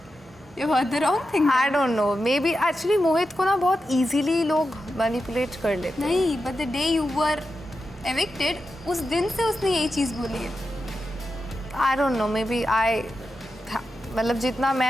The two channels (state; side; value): normal; both; correlation 0.89